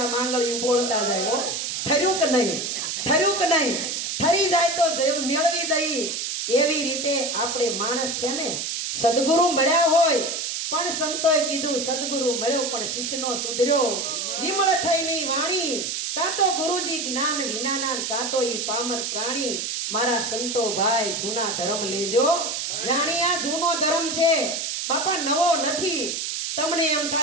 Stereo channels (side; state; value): right; noise; hiss, 3 dB below the sound